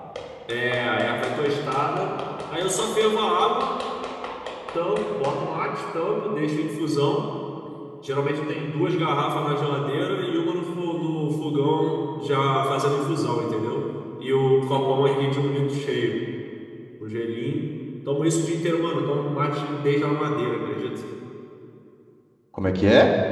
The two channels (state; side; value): identical; both; correlation 1.00